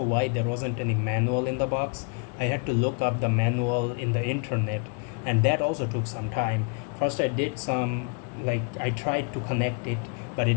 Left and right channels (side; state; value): right; quieter; 34.3 dB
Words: there wasn't any manual in the box. I had to look up the manual in the internet, and that also took some time. First I did some, like, I tried to connect it, but